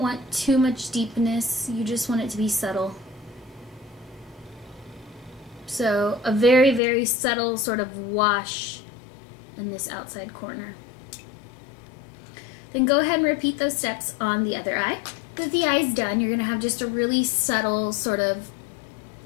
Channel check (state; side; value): drops out; right; at 6.8 s